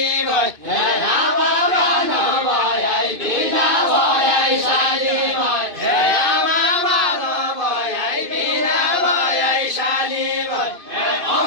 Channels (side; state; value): left; late; 2.5 ms